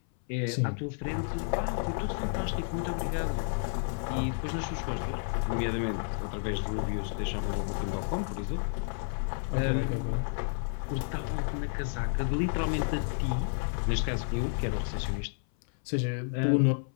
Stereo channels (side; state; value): right; silent; 57 dB below the other